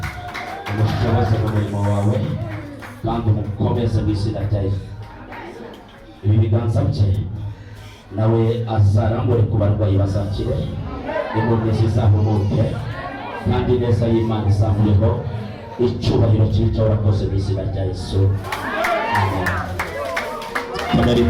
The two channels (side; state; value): both; identical; correlation 1.00